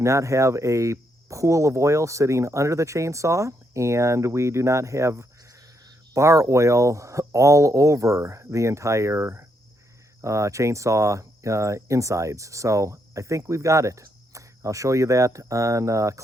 have a pool of oil sitting under the chainsaw, and we do not have bar oil all over the entire chainsaw insides. So I think we've got it. I'll show you that on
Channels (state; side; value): normal; both; correlation 0.77